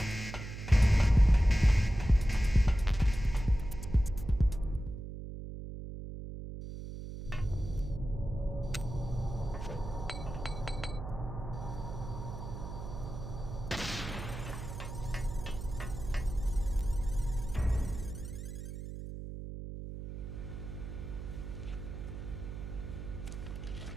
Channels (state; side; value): noise; right; hum, 8 dB below the sound